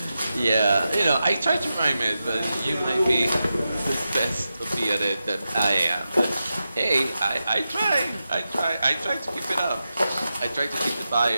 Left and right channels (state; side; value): inverted; both; correlation -0.90